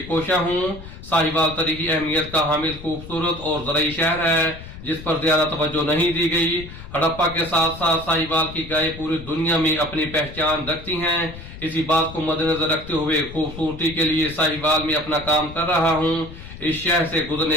कोशा हूं। साहिवाल तरीकी अहमियत का हामिल खूबसूरत और ज़रई शहर है जिस पर ज्यादा तवज्जो नहीं दी गई। हड़प्पा के साथ साथ साहिवाल की गायें पूरी दुनिया में अपनी पहचान रखती हैं। इसी बात को मद्देनजर रखते हुए खूबसूरती के लिए साहिवाल में अपना काम कर रहा हूं। इस शहर से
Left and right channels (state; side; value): noise; left; rumble, 14 dB below the sound